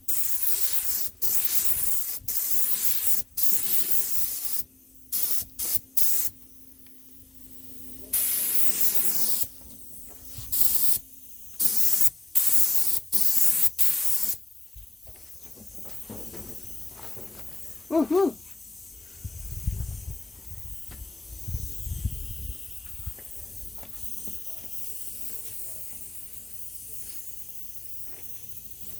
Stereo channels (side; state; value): right; quieter; 3.2 dB